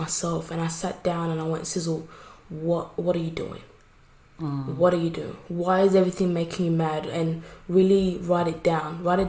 and I sat down and I went, Sizzle, what are you doing? What are you doing? Why is everything making you mad? And really write it down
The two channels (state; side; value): identical; both; correlation 1.00